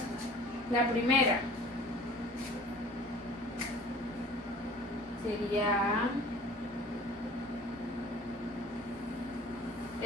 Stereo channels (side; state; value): both; normal; correlation 0.47